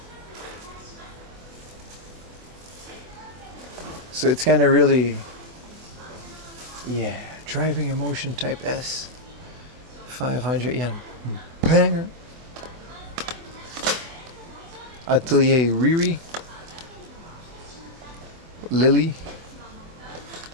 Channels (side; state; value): left; late; 24 ms